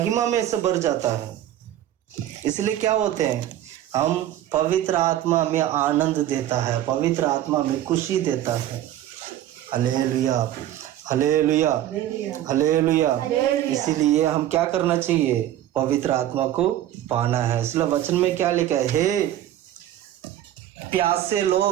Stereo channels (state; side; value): quieter; left; 12.5 dB